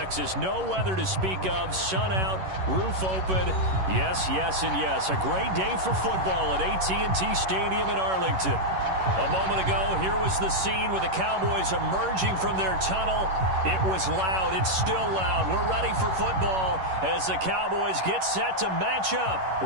No weather to speak of. Sun out, roof open. Yes, yes, and yes. A great day for football at AT&T Stadium in Arlington. A moment ago, here was the scene with the Cowboys emerging from their tunnel. It was loud. It's still loud. We're ready for football as the Cowboys get set to match up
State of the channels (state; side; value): late; left; 11 ms